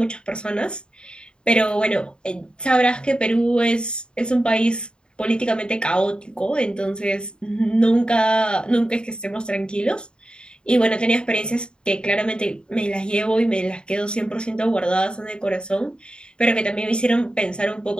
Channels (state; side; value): late; right; 0.050 ms